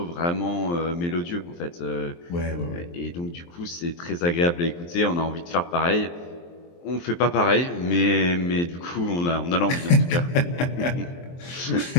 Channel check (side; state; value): right; late; 23 ms